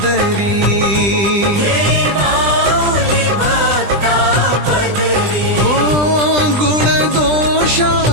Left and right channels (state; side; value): late; left; 20 ms